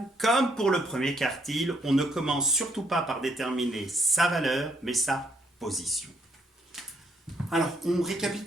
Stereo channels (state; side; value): normal; both; correlation 0.72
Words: comme pour le premier quartile, on ne commence surtout pas par déterminer sa valeur, mais sa position. Alors, on